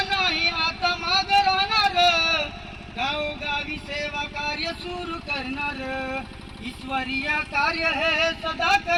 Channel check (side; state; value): both; identical; correlation 1.00